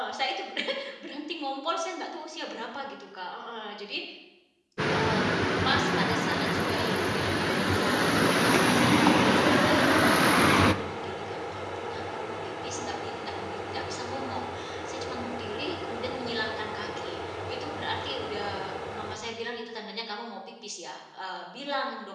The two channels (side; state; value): both; identical; correlation 1.00